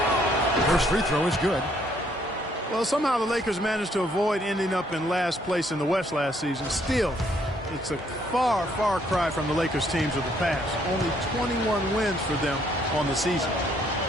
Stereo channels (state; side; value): normal; both; correlation 0.68